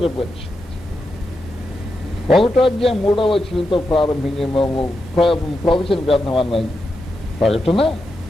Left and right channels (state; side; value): normal; both; correlation 0.87